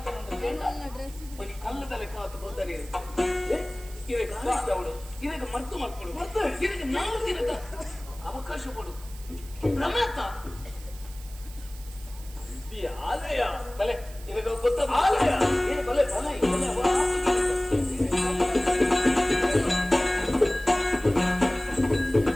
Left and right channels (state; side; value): noise; right; hiss, 19 dB below the sound